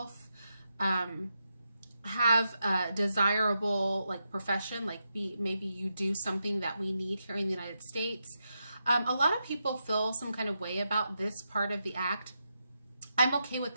have a desirable profession, maybe you do something that we need here in the United States. A lot of people feel some kind of way about this part of the act. I'm okay with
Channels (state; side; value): inverted; both; correlation -0.85